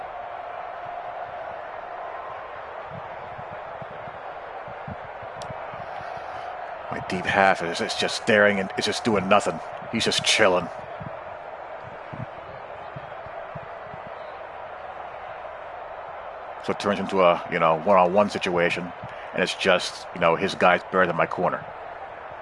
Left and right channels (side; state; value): both; identical; correlation 1.00